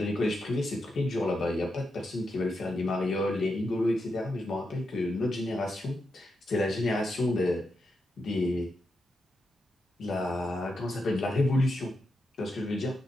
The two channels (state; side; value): normal; both; correlation 0.86